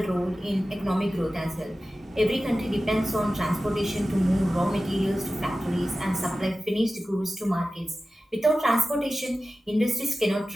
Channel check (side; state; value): both; normal; correlation 0.95